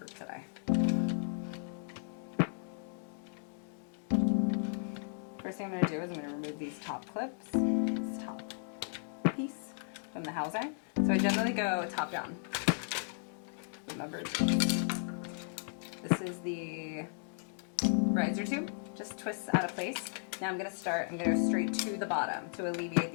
today. First thing I'm going to do is I'm going to remove these top clips, this top piece from the housing. So I generally go top down. Remember, this is the riser tube, just twists out of place. Now I'm going to go straight to the bottom to alleviate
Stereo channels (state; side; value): silent; right; digital silence